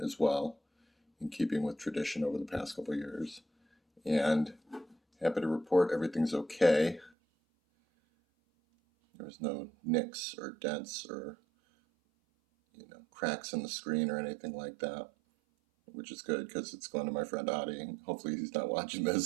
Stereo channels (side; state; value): left; drops out; at 7.1 s